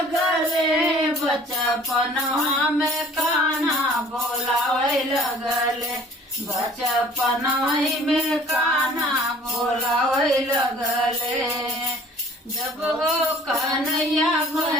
बचपनवा में कान्हा बोलावै लगले बचपनवा में कान्हा बोलावै लगले जब हो कन्हैया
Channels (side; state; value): both; normal; correlation 0.51